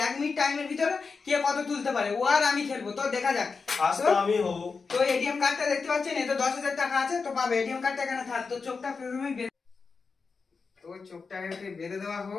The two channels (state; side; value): quieter; right; 4.8 dB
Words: 1 মিনিট টাইমের ভিতরে কে কত তুলতে পারে, ও আর আমি খেলবো। তো দেখা যাক। তো এটিএম কার্ডটা দেখতে পাচ্ছেন, এতে 10,000 টাকা আছে। তো পাবে এটিএম কার্ডটা এখানে থাক। তো চোখটা প্রথমেই তো চোখটাকে বেঁধে দেওয়া